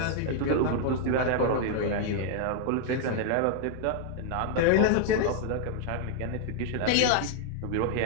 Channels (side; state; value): both; different; correlation 0.00